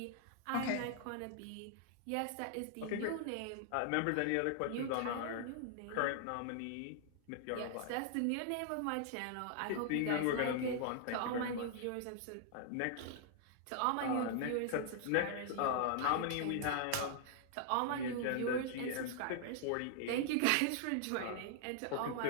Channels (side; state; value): both; different; correlation -0.01